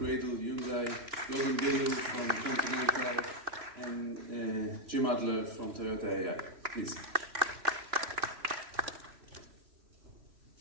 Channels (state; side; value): late; left; 3.1 ms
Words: Hyundai, Bilo from Continental, and Jim Adler from Toyota Eyal. Please.